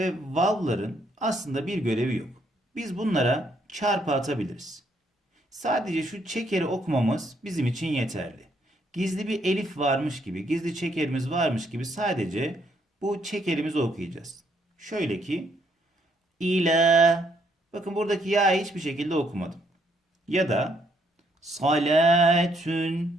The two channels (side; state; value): both; normal; correlation 0.71